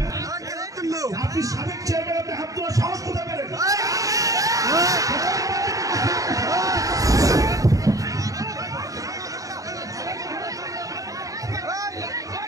আপনি সাবেক চেয়ারম্যান, আপনি হাত তোলার সাহস কোথায় পেলেন?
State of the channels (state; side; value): late; left; 0.16 ms